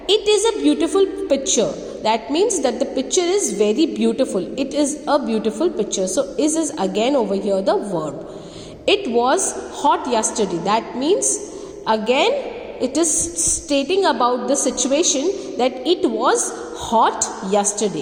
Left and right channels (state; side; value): identical; both; correlation 1.00